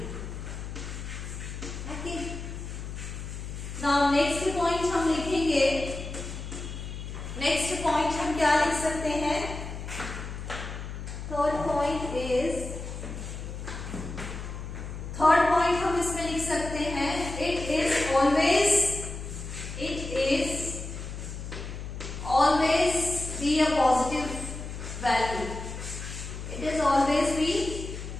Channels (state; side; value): noise; left; hum, 8 dB below the sound